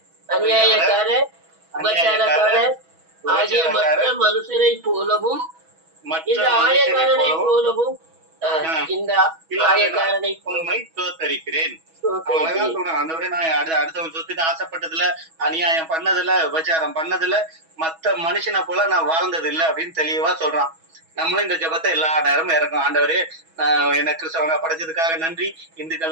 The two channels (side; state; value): left; late; 6.2 ms